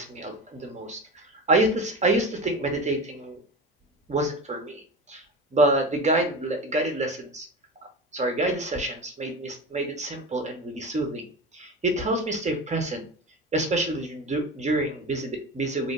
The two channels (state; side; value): normal; both; correlation 0.28